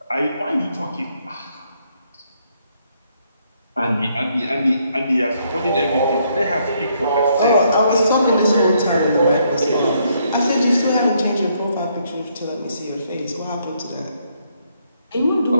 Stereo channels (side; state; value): both; inverted; correlation -0.72